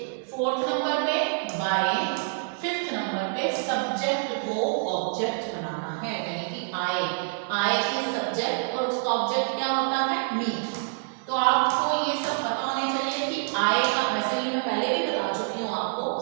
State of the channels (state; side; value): silent; left; 60 dB below the other